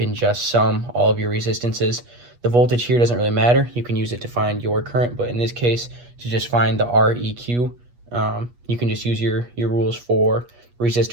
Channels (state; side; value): late; left; 8.3 ms